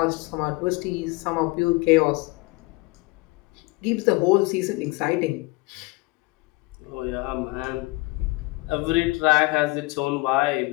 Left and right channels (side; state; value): right; quieter; 23.8 dB